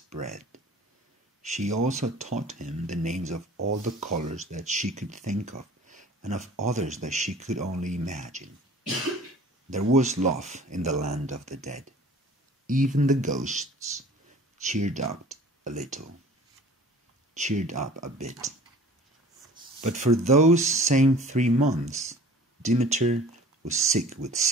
bread. She also taught him the names of all the colors that she could think of and of others that she could only imagine. There was love in the land of the dead. Even the ghosts cheered up a bit. But for those same 3 months, Demeter was sick with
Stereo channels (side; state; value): both; normal; correlation 0.46